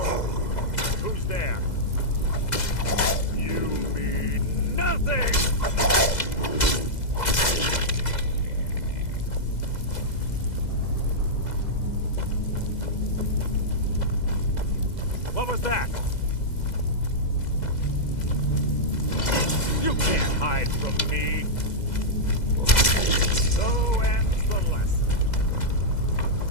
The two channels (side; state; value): right; late; 2.0 ms